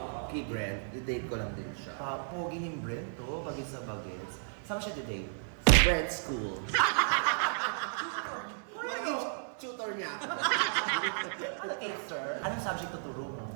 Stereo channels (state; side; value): silent; left; 55 dB below the other